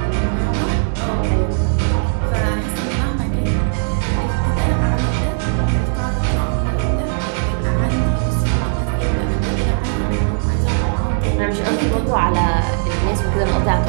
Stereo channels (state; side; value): silent; left; digital silence